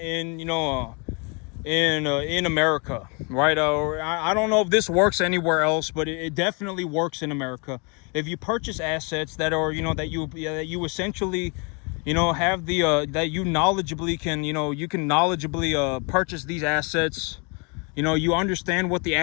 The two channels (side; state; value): right; quieter; 33.1 dB